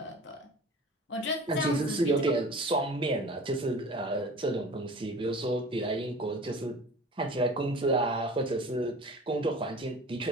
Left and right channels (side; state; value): both; normal; correlation 0.40